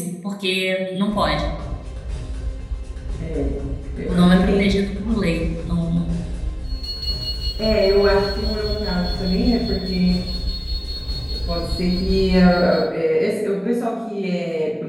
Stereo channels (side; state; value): both; identical; correlation 1.00